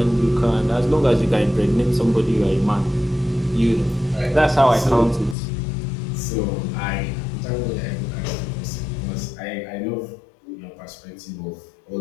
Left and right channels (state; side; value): drops out; right; at 5.4 s